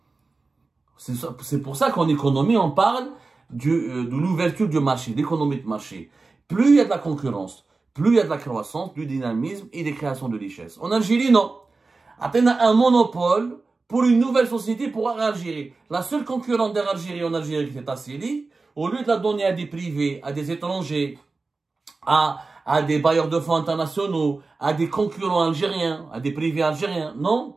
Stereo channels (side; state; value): left; quieter; 3.8 dB